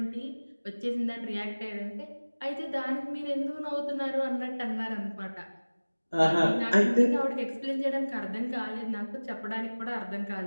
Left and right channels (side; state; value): both; inverted; correlation -1.00